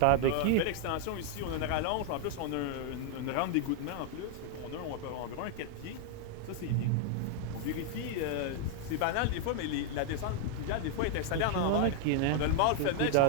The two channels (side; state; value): both; different; correlation 0.00